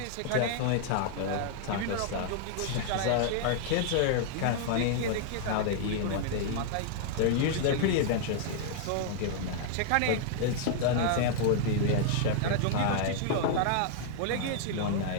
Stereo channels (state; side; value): different; both; correlation -0.01